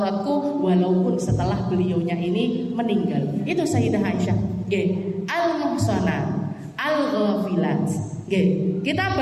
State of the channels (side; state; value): both; identical; correlation 1.00